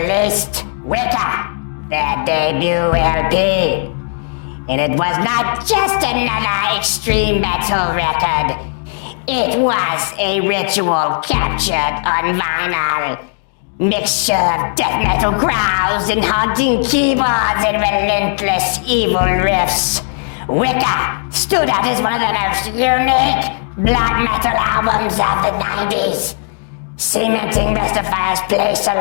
Wicca, their debut LP. And it was not just another extreme metal record. It was a ritual captured on vinyl. Mixture of death metal growls and haunting keyboards and relentless evil riffs. Wicca stood out as one of the most unique black metal albums of the 90s, cementing Mystifier's place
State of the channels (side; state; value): right; silent; digital silence